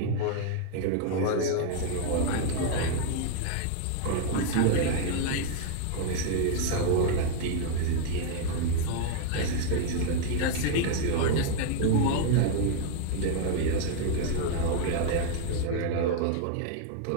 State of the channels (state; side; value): different; both; correlation 0.00